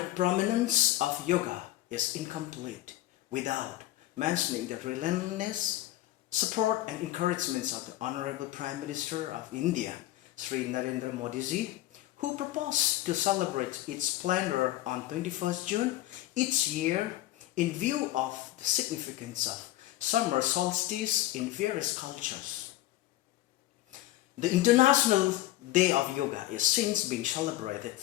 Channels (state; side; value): quieter; right; 15.7 dB